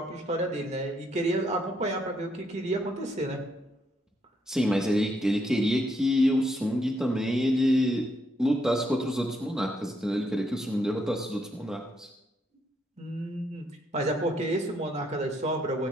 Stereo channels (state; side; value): normal; both; correlation 0.75